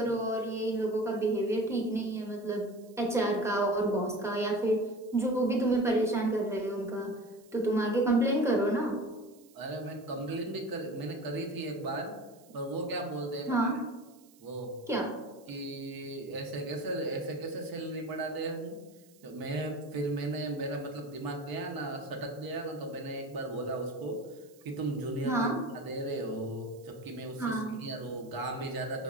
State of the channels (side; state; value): right; noise; hiss, 27 dB below the sound